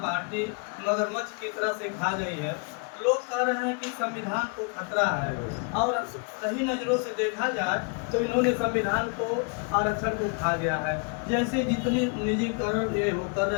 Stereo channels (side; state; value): right; quieter; 35.1 dB